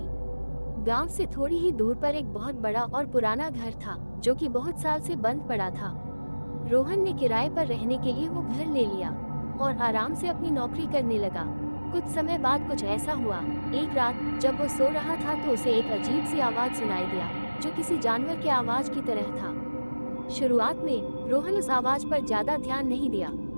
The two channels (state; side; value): inverted; both; correlation -1.00